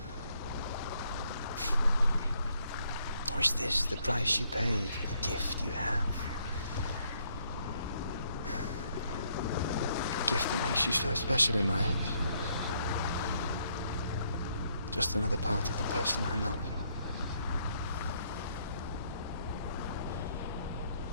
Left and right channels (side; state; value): both; inverted; correlation -0.71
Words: Or is this the price you pay for the gift you have? A gift that makes you so special in my eyes. Just another part of the person I love.